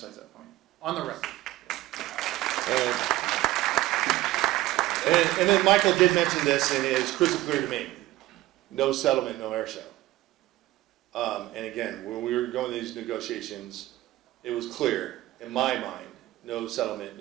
that point. On the record. And then Michael did mention this, and it is crystal clear to me. No settlement, no air show. And again, when we were going to these negotiations, it was clear, in my mind, no settlement,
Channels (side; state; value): left; quieter; 16.8 dB